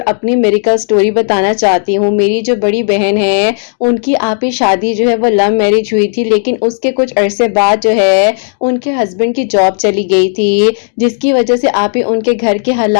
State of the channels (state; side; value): silent; right; digital silence